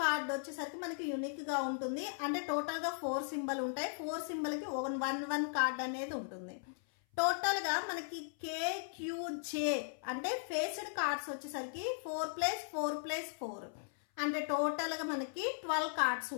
వచ్చేసరికి మనకి యూనిక్ గా ఉంటుంది. అంటే టోటల్ గా 4 సింబల్ ఉంటాయి. 4 సింబల్ కి 1 కార్డ్ అనేది ఉంటుంది. టోటల్ గా మనకి KQJ అంటే ఫేస్డ్ కార్డ్స్ వచ్చేసరికి 4 + 4 + 4 అంటే టోటల్ గా మనకి 12 కార్డ్స్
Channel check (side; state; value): right; silent; 53 dB below the other